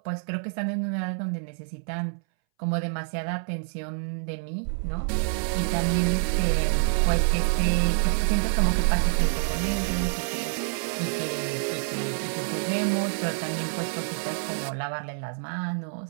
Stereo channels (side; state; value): left; silent; 60 dB below the other